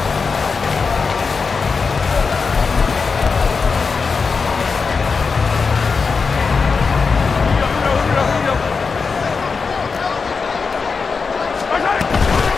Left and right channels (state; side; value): quieter; right; 5.0 dB